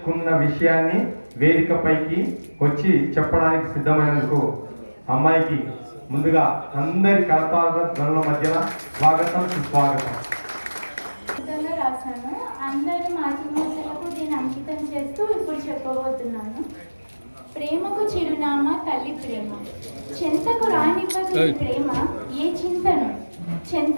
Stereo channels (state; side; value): inverted; both; correlation -1.00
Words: విషయాన్ని వేదికపైకి వచ్చి చెప్పడానికి సిద్ధమైనందుకు అమ్మాయికి ముందుగా అందరి కరతాళ ధ్వనుల మధ్యన స్వాగతం, సుస్వాగతం. రాశాను. అందరి మాతృమూర్తులకు దీన్ని అంకితం చేస్తూ ఇప్పుడు చెప్పబోతున్నాను. ప్రేమకు చిరునామా తల్లి ప్రేమ, చెంతకు రానివ్వదు ఈ ప్రేమ ఏ చింతను,